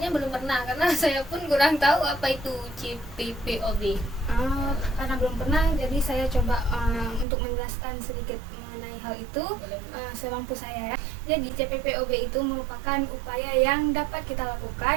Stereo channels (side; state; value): left; drops out; at 7.2 s